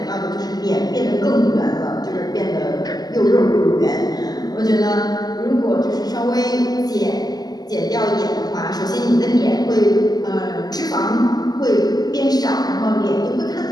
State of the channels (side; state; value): right; late; 0.19 ms